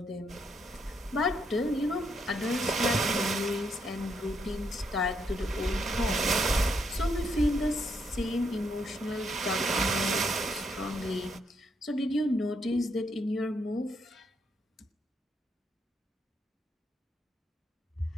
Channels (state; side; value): normal; both; correlation 0.76